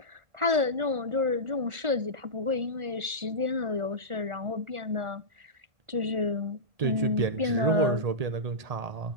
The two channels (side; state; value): left; late; 1.4 ms